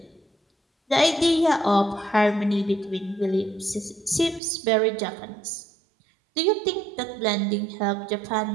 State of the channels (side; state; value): left; drops out; at 4.4 s